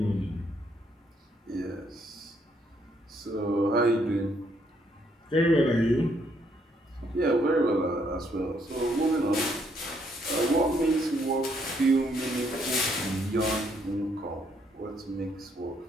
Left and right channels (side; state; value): both; normal; correlation 0.71